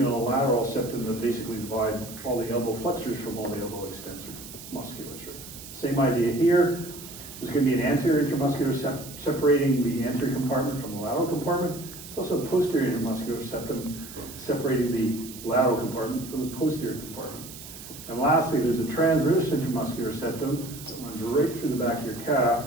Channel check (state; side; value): noise; right; hiss, 14 dB below the sound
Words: and a lateral septum that basically divide all the elbow flexors from all the elbow extensor musculature. Same idea here. There's going to be an anterior intramuscular separating the anterior compartment from the lateral compartment. There's also a posterior intramuscular septum separating the lateral compartment from the posterior compartment. And lastly, there's a transverse intramuscular septum that runs right through the back of your calf